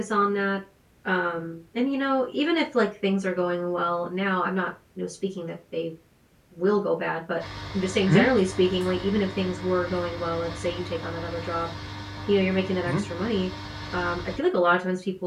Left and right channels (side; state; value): both; identical; correlation 1.00